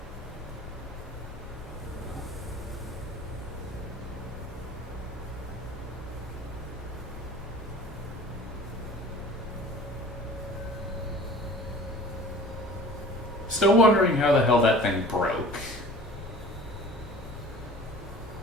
Still wondering how the hell that thing broke.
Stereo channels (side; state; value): both; normal; correlation 0.44